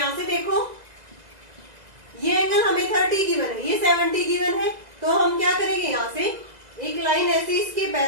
से देखो ये एंगल हमें 30 गिवन है, ये 70 गिवन है। तो हम क्या करेंगे, यहाँ से एक लाइन ऐसे इसके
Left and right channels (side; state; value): left; late; 2.0 ms